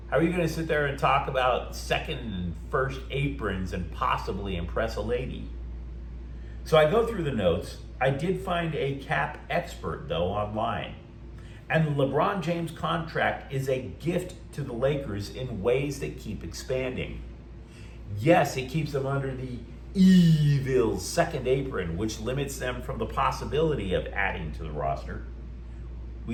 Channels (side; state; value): both; identical; correlation 1.00